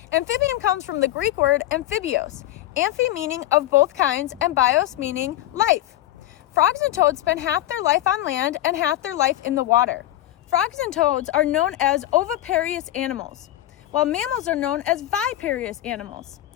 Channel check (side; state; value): right; quieter; 14.3 dB